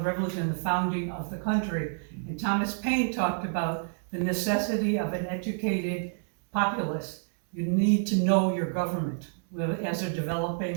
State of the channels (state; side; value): silent; left; digital silence